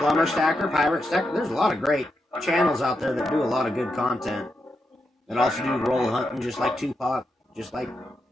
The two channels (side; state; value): both; normal; correlation 0.85